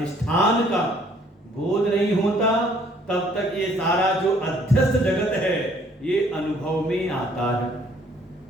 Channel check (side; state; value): both; normal; correlation 0.61